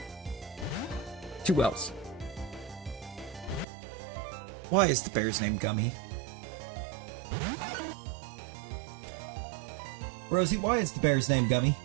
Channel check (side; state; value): left; drops out; at 3.7 s